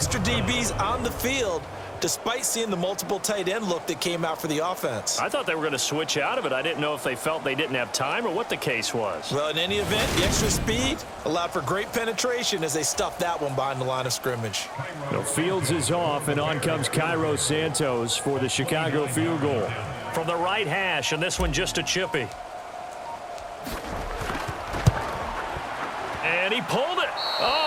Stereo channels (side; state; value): both; identical; correlation 1.00